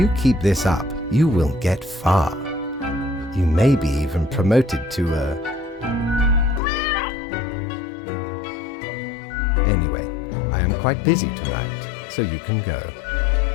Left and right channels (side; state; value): right; drops out; at 6.6 s